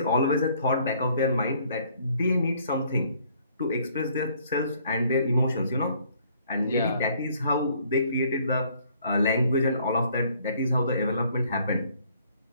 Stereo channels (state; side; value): inverted; both; correlation -0.62